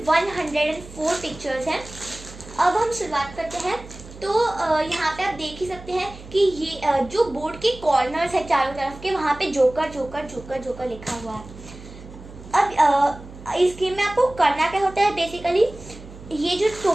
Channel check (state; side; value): noise; right; hum, 16 dB below the sound